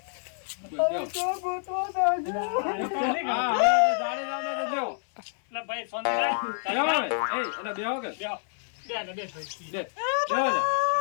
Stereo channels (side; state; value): right; silent; 59 dB below the other